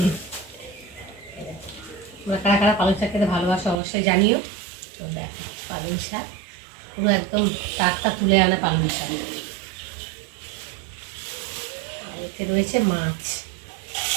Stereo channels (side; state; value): left; drops out; at 3.8 s